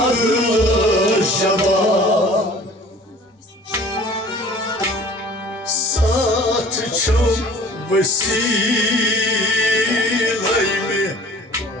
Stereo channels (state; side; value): normal; both; correlation 0.48